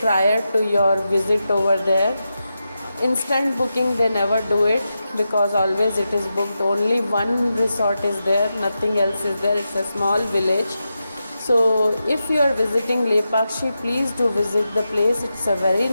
to your visit over there. Instant booking they never do it, because always it is booked. Only one resort is there, nothing else is there. It's a small village. So if you are visiting Lepakshi, please do visit the place. It's a very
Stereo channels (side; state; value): both; inverted; correlation -0.89